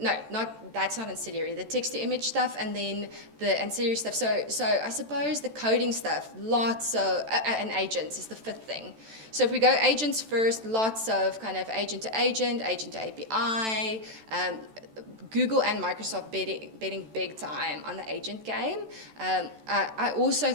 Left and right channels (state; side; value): late; left; 14 ms